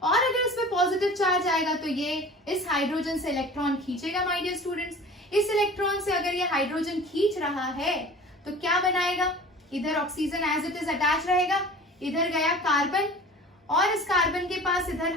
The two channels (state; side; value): normal; both; correlation 0.41